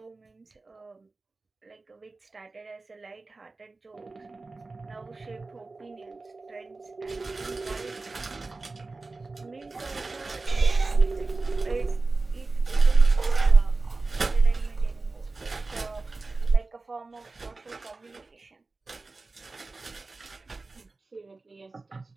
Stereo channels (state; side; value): quieter; left; 3.5 dB